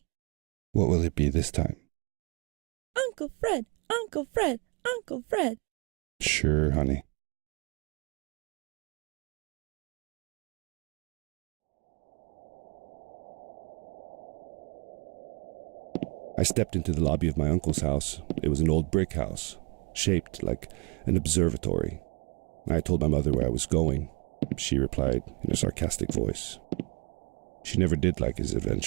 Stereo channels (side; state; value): left; quieter; 31.1 dB